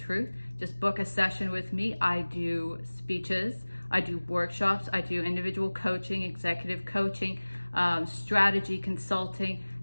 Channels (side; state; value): both; inverted; correlation -1.00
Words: Just book a session with me. I do speeches, I do workshops, I do individual coaching, executive coaching, strategy consulting,